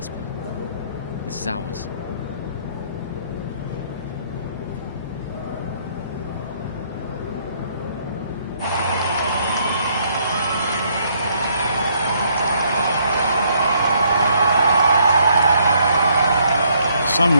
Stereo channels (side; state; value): both; inverted; correlation -0.68